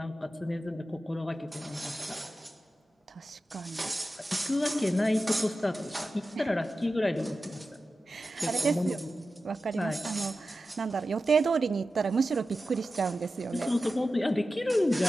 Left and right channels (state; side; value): normal; both; correlation 0.93